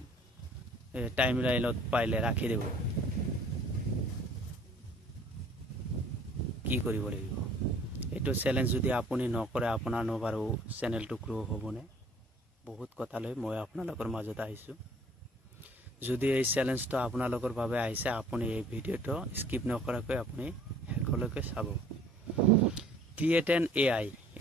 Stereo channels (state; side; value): normal; both; correlation 0.54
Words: টাইমলাইনত পাৰিলে ৰাখি দিব। কি কৰিব লাগিব এইটো চ্যালেঞ্জ যদি আপুনি নকৰে আপোনাৰ বাৰু চেনেলটো গ্ৰো হ'বনে? বহুত কথা লৈ মই আপোনালোকৰ মাজত আহিছো। যদি এই চ্যালেঞ্জটো আপোনালোকৰ বাবে আহিছে আপুনি এই ভিডিওটো স্কিপ নকৰাকৈ আপুনি শেষলৈকে চাব। ক্ৰিয়েট এন এআই